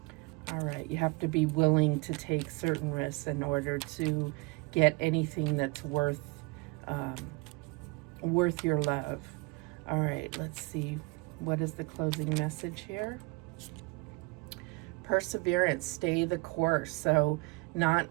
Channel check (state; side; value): quieter; left; 26.0 dB